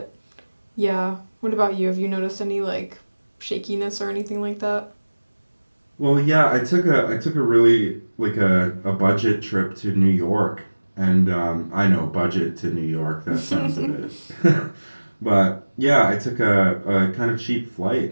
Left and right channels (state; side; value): inverted; both; correlation -1.00